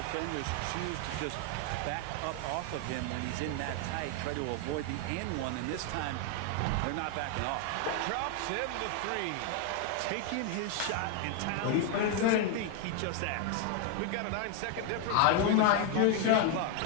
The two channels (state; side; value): different; both; correlation 0.00